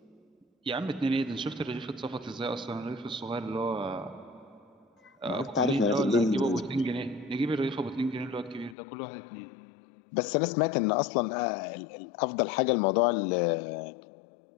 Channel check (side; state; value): right; drops out; at 8.8 s